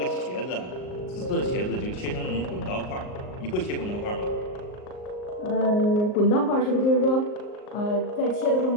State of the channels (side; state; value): right; late; 38 ms